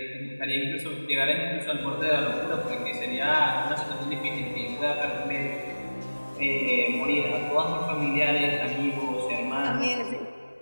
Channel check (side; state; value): both; inverted; correlation -1.00